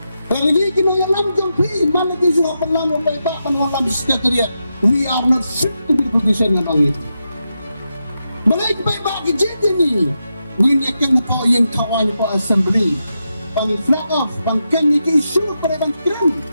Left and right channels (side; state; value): both; inverted; correlation -0.87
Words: Lagi kinayalam yung pi, malagi sa pangalan pa iba pangalam sa kanya. We are not fit to be position ng ibi. Bagay pa iba kijiti ni. Nginyakan ko yung kawan ko assembly. Pang flag off, pang communication, para bang tren.